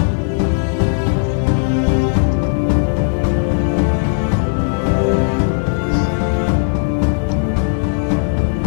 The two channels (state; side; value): silent; right; digital silence